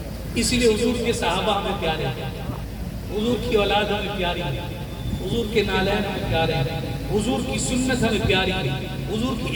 اسی لیے حضور کے صحابہ ہمیں پیارے ہیں، حضور کی اولاد ہمیں پیاری ہے، حضور کے نالین ہمیں پیارے ہیں، حضور کی سنت ہمیں پیاری ہے، حضور کی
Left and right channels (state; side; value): identical; both; correlation 1.00